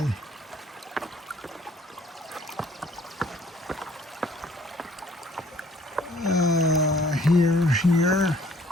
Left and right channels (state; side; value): normal; both; correlation 0.58